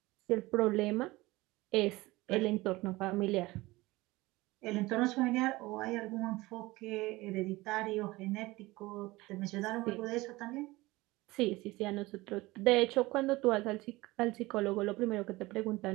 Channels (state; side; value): quieter; left; 20.4 dB